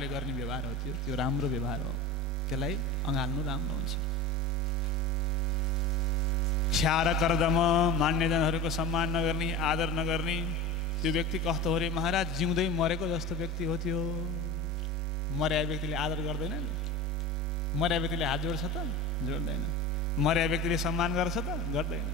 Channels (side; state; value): both; normal; correlation 0.31